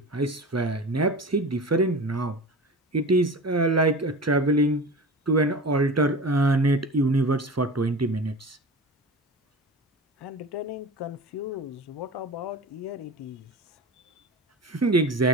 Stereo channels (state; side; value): normal; both; correlation 0.32